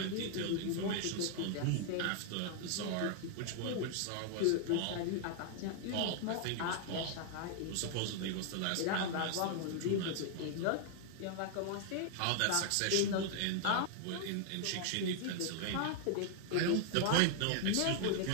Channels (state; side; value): different; both; correlation 0.00